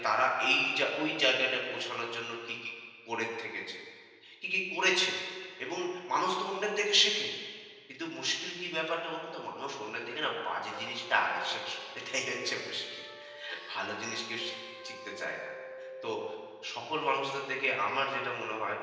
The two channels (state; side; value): identical; both; correlation 1.00